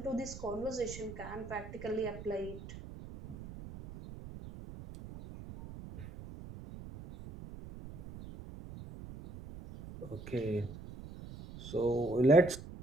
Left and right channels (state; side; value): noise; right; rumble, 13 dB below the sound